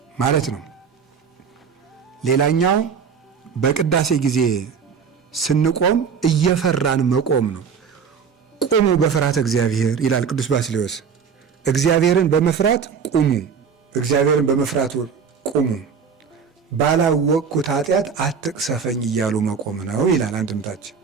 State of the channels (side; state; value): left; quieter; 6.3 dB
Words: ማለት ነው። ሌላኛው በቅዳሴ ጊዜ ስንቆም እየፈራን መቆም ነው። ቁሙ በፍርሃተ እግዚአብሔር ይላል ቅዱስ ባስልዮስ። እግዚአብሔርን በመፍራት ቁሙ፣ እግዚአብሔርን በመፍራት ቁሙ፣ ባላወቅኩት ኃጢአት አትቅሰፈኝ እያሉ መቆም ነው ይላል አንድምታችን።